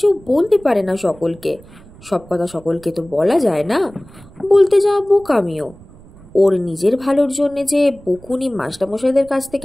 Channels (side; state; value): right; noise; rumble, 22 dB below the sound